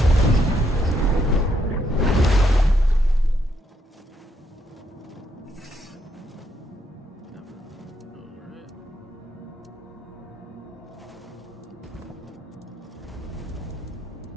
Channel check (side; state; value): both; normal; correlation 0.75